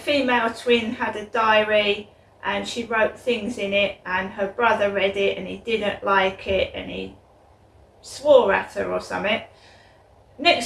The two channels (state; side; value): identical; both; correlation 1.00